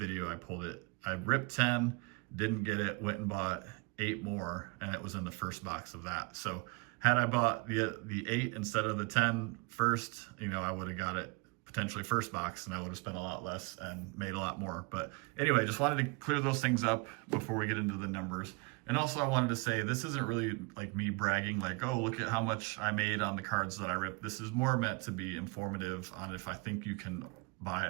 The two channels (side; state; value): left; quieter; 28.7 dB